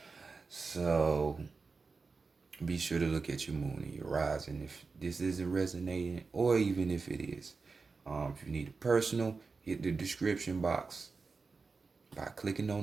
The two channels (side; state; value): left; quieter; 4.4 dB